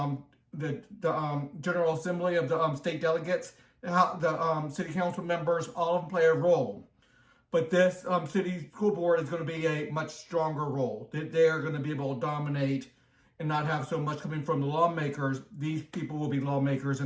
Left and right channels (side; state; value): both; identical; correlation 1.00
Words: Assembly of the state delegates. The city council members, all of them play a role. But this city school board is going to be a much stronger role. They are going to be able to dominate and not have so much coming from the lawmakers. These people will be lawmakers